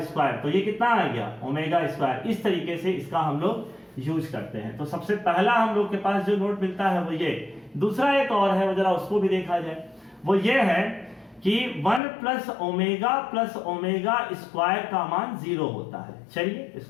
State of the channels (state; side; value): drops out; right; at 12.0 s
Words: स्क्वायर, तो ये कितना आ गया, ओमेगा स्क्वायर। इस तरीके से इसका हम लोग यूज करते हैं। तो सबसे पहला हम लोग के पास जो नोट मिलता है वो ये। दूसरा एक और है, वो जरा उसको भी देखा जाए, वो ये है कि 1 प्लस ओमेगा स्क्वायर का मान 0 होता है। चलिए